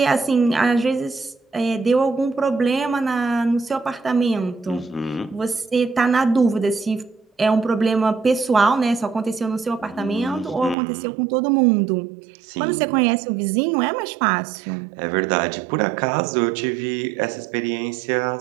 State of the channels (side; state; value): left; drops out; at 10.8 s